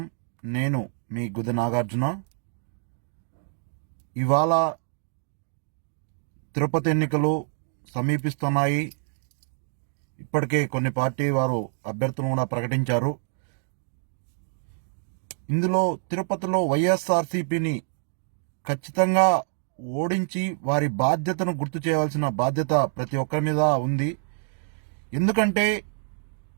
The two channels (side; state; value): left; silent; digital silence